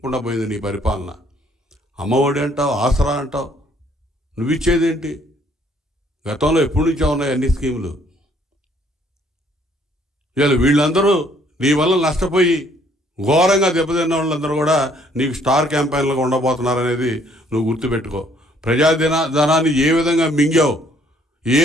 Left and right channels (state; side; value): normal; both; correlation 0.64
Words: పోయింది నీ పరిపాలన. అమ్మఒడి అంటావు, ఆసరా అంటావు, నువ్వు ఇచ్చేదేంటి? గతంలో ఎప్పటి నుంచో ఉన్నాయి అన్ని స్కీములు. ఇవాళ వీళ్ళందరూ నీ వల్ల నష్టపోయి ఘోరంగా దెబ్బతిన్న వాళ్ళందరూ కూడా నీకు స్టార్ క్యాంపెయిన్లుగా ఉండబోతున్నారనేది నువ్వు గుర్తుపెట్టుకో. ప్రజాధనాన్ని ఏ విధంగా మింగావు, ఏ